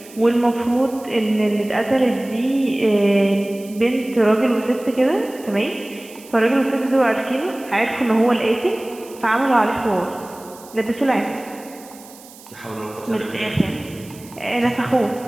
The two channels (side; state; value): right; noise; hiss, 21 dB below the sound